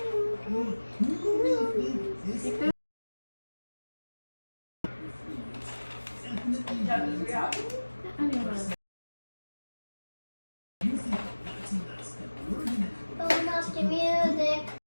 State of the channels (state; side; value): inverted; both; correlation -1.00